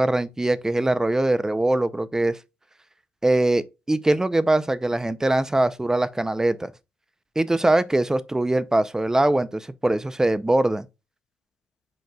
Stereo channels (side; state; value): both; normal; correlation 0.98